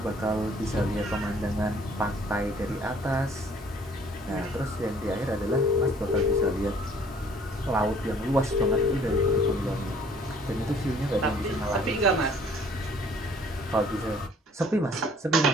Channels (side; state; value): both; normal; correlation 0.57